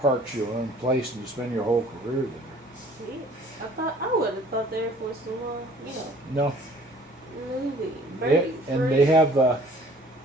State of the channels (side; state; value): both; normal; correlation 0.53